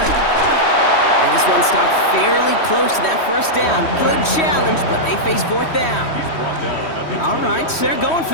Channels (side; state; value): right; late; 3.1 ms